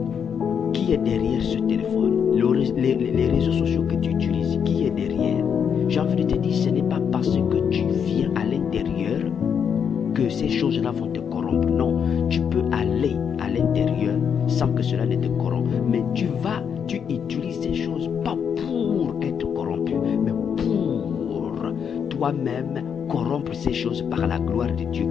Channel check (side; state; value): right; quieter; 7.4 dB